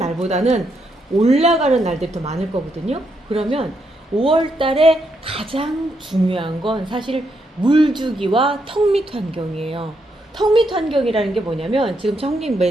올라가는 날들이 더 많을 거거든요. 그러면 5월 달에 가장 중요한 건 사실 물주기와 턱밑 환경이에요. 턱밑 환경이라는 게 뭐냐면 지금 청님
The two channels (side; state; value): both; normal; correlation 0.79